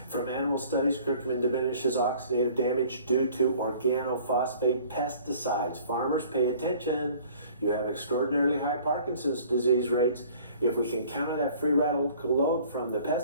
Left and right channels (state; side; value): inverted; both; correlation -0.52